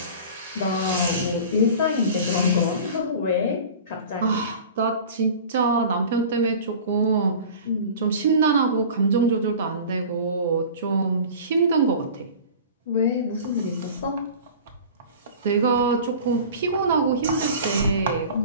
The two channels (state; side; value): inverted; both; correlation -0.39